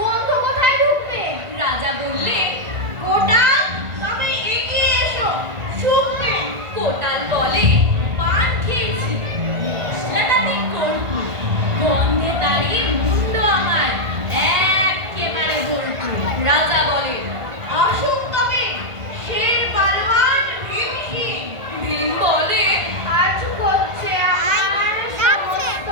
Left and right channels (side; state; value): left; late; 1.5 ms